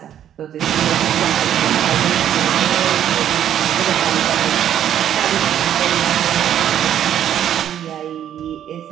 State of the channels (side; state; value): left; quieter; 10.3 dB